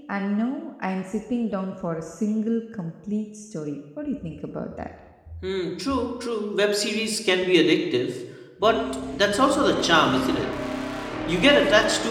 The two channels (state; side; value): identical; both; correlation 1.00